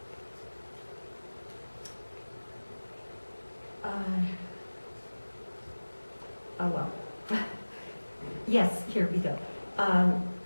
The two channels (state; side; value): inverted; both; correlation -1.00